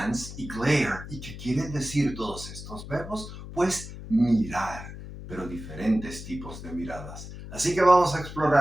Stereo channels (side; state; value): left; noise; hum, 12 dB below the sound